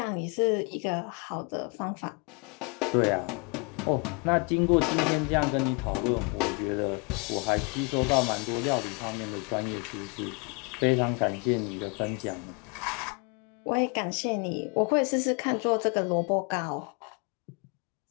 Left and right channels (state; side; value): quieter; right; 33.1 dB